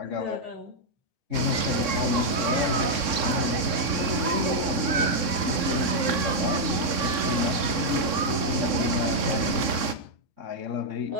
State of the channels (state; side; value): late; left; 3.6 ms